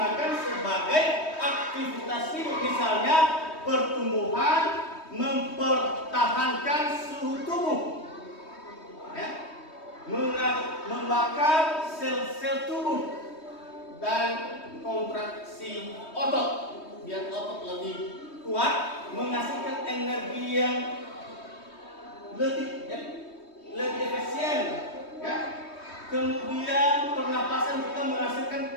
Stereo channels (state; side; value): late; right; 3.2 ms